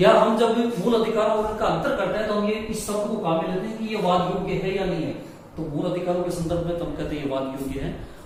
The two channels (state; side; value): identical; both; correlation 1.00